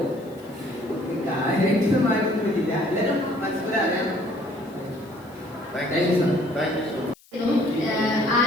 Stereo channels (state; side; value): noise; left; hiss, 28 dB below the sound